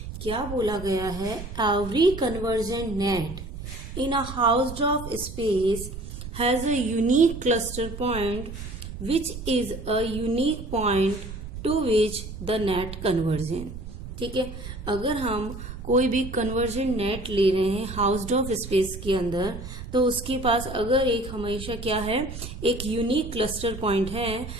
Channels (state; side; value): noise; right; rumble, 10 dB below the sound